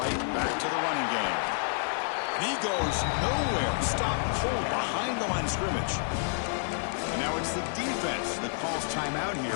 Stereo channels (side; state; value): right; silent; 58 dB below the other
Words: back to the running game. And he goes nowhere. Stop cold behind the line of scrimmage. And now it's the defense that calls timeout here,